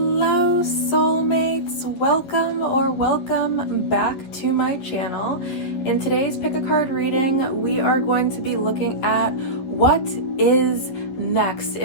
soulmates, welcome back to my channel. In today's pick a card reading, we are going to be looking at what is next.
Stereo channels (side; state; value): right; late; 11 ms